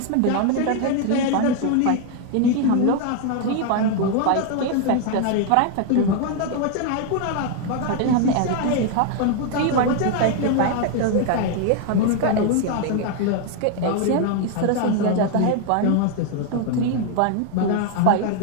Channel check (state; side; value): different; both; correlation 0.00